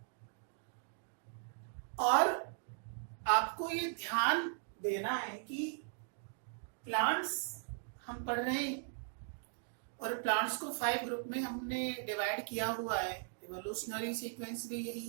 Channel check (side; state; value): left; silent; digital silence